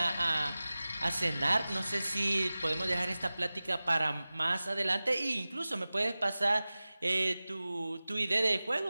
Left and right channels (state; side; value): inverted; both; correlation -0.97